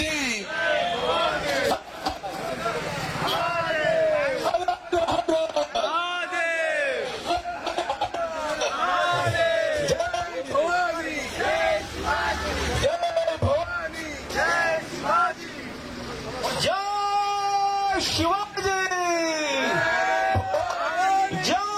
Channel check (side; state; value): both; identical; correlation 1.00